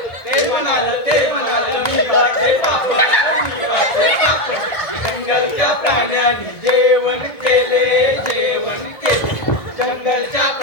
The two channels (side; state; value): right; late; 1.7 ms